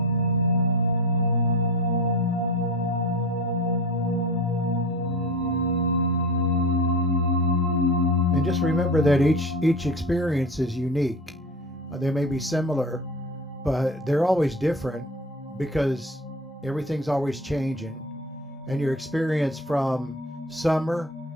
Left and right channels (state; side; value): normal; both; correlation 0.32